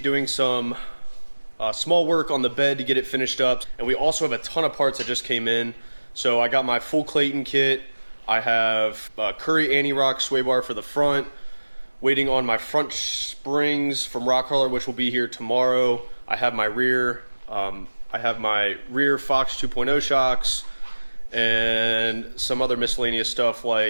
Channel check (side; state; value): both; inverted; correlation -1.00